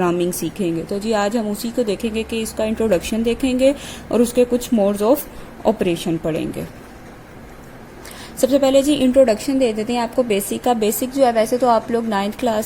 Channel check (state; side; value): identical; both; correlation 1.00